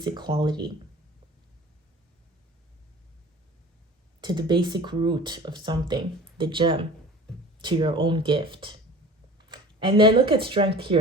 quality, to the basic root of something, the gem, to your own gift. And then look at strength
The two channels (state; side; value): normal; both; correlation 0.42